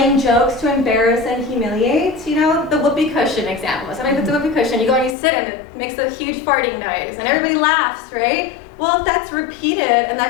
jokes to embarrass and humiliate, the whoopee cushion example. Somebody puts a whoopee cushion, you go and you sit and it makes a huge farting noise, and everybody laughs, right? Well, if that's repeated and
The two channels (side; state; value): right; drops out; at 5.2 s